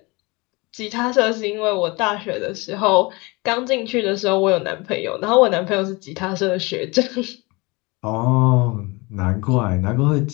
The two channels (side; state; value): right; quieter; 25.5 dB